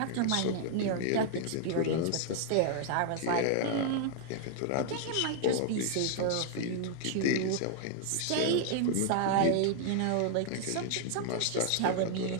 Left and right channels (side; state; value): both; different; correlation 0.00